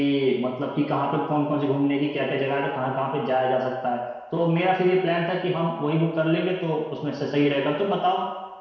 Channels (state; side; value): identical; both; correlation 1.00